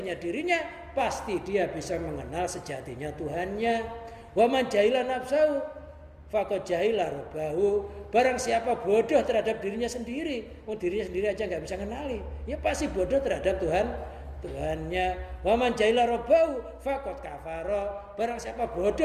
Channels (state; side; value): identical; both; correlation 1.00